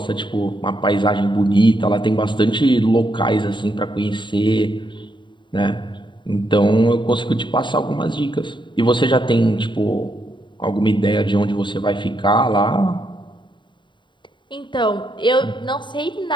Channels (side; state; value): right; late; 0.23 ms